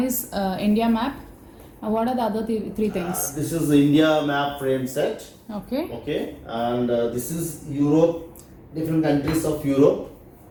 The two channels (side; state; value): both; identical; correlation 1.00